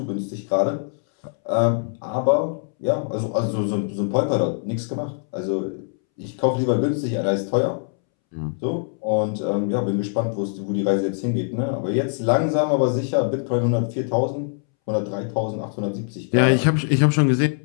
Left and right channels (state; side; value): silent; right; 64 dB below the other